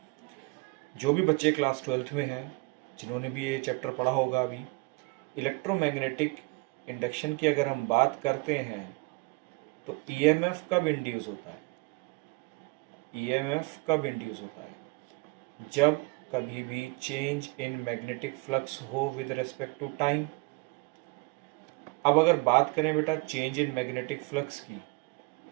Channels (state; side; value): quieter; left; 28.0 dB